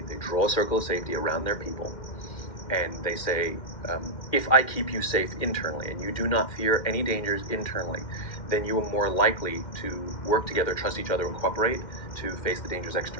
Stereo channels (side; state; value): right; late; 2.1 ms